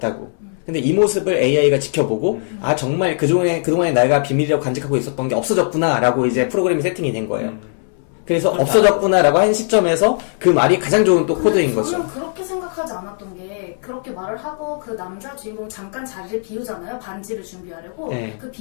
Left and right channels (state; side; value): silent; right; 67 dB below the other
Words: 근데 이 모습을 AI가 지켜보고 아 정말 그동안에 내가 비밀이라고 간직하고 있었던 게 없어졌구나 라고 이제 프로그램이 세팅이 된 거예요. 그래서 그렇게 없어졌구나 라고 한 시점에서 그 말이 가장 좋은 또 근데 코드인 저는 거죠. 그렇게 생각하지 않았던 게 그렇게 말을 하고 그 남자 주인공 잠깐 자리를 비우잖아요. 반지를 준비하려고. 네. 그